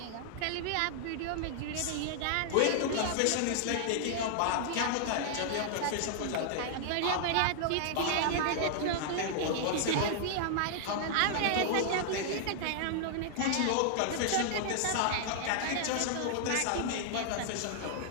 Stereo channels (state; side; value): different; both; correlation -0.01